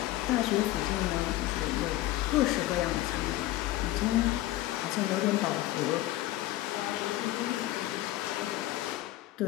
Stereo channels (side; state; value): right; quieter; 16.0 dB